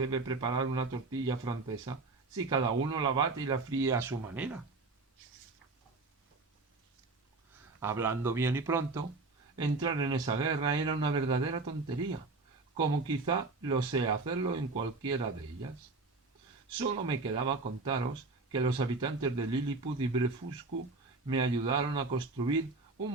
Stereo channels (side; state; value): left; quieter; 3.6 dB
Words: preparar una tortilla francesa si cada uno la bate y la fríe a su manera? Hablando bien y pronto, entrar en esa guerra era una verdadera tontería, como quizá lo sea hacerlo en cualquiera de ellas. Solo me quedaba contaros que los habitantes de Lilliput y Blefuscu me ayudaron a construir